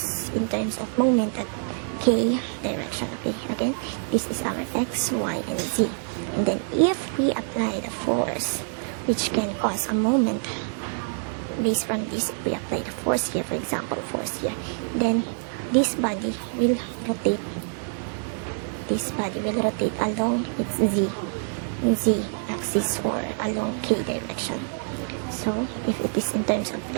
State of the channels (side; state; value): left; silent; 61 dB below the other